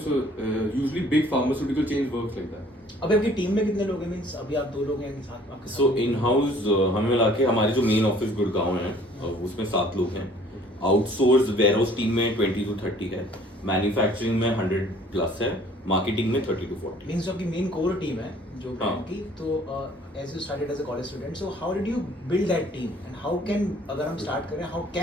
So usually big pharmaceutical chains works like that. अभी आपकी team में कितने लोग हैं? Means अभी आप 2 लोग हैं साथ में आपके So साथ? in house हमें मिला के हमारी जो मेन ऑफिस गुड़गांव है उसमें 7 लोग हैं. आउटसोर्स वेयरहाउस टीम में 20 to 30 है, मैन्युफैक्चरिंग में 100 प्लस है, मार्केटिंग में 30 to 40. मींस आपकी मेन कोर टीम है जो हाँ. ब्रांड की. तो as you started as a college student, so how did you build that team and how can, अगर हम स्टार्ट करें, how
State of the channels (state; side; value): normal; both; correlation 0.55